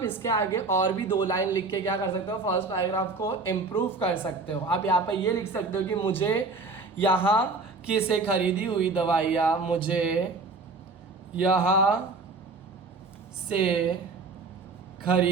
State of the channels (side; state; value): left; quieter; 3.8 dB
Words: इसके आगे और भी 2 लाइन लिख के क्या कर सकते हो, फर्स्ट पैराग्राफ को इम्प्रूव कर सकते हो। आप यहाँ पर ये लिख सकते हो कि मुझे यहाँ की से खरीदी हुई दवाइयाँ, मुझे यहाँ से